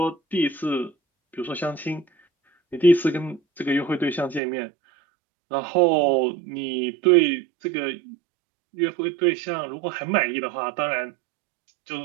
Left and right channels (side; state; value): left; drops out; at 4.4 s